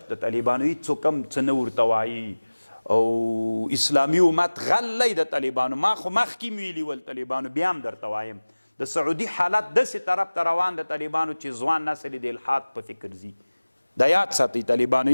د طالبانو هېڅوک هم څه نه ورته وایي او اسلامي امت غلی د طالبانو ما خو مخکې ویلي ول طالبانو بیا هم درته وایم د سعودي حالت داسې طرف ته روان د طالبانو چې ځوان نسل د الحاد په فکر ځي دا یاد ساتئ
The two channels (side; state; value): both; inverted; correlation -1.00